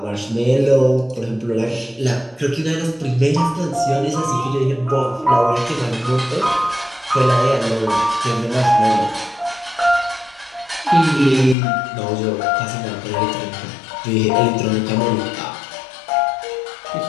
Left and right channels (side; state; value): right; drops out; at 11.6 s